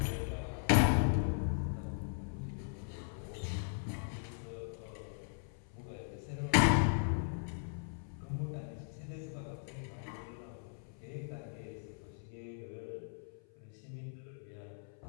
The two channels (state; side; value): silent; right; 52 dB below the other